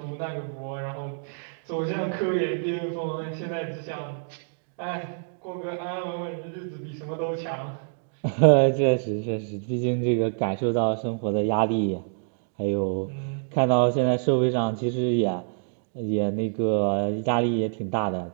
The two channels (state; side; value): silent; left; digital silence